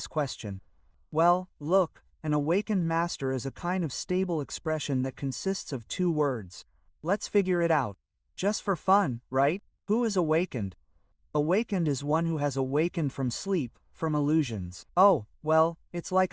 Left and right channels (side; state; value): both; identical; correlation 1.00